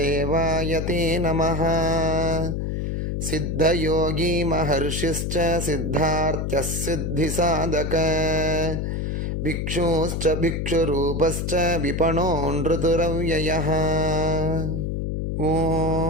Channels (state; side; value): noise; left; hum, 1 dB below the sound